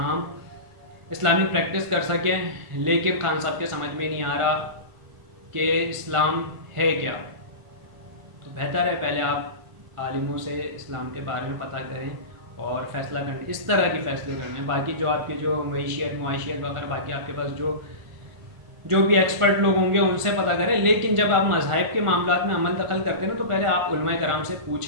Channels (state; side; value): late; left; 1.5 ms